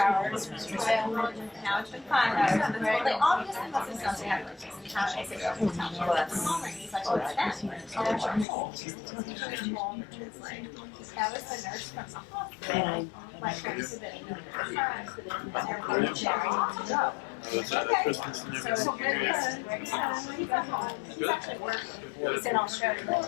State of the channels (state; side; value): drops out; right; at 8.5 s